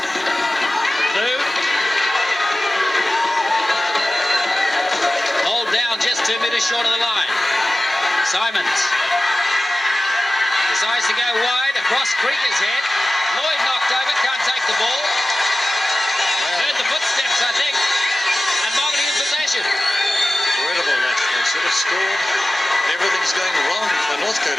Blue. Hold down just 2 meters short of the line. Simons decides to go wide across Krieger's head. Lloyd knocked over, can't take the ball. Heard the footsteps, I think. And Mangere in possession. Incredible, they should have scored. Everything's going wrong for Northcote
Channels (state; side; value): normal; both; correlation 0.96